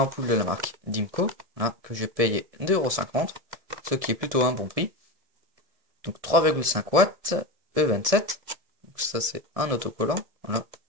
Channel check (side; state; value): left; late; 1.7 ms